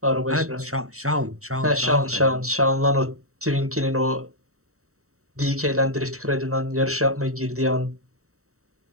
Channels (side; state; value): left; late; 0.64 ms